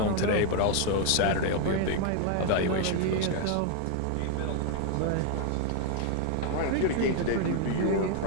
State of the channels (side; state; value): both; different; correlation 0.00